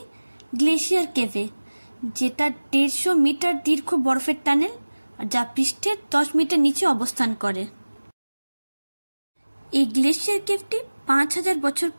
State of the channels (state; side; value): inverted; both; correlation -1.00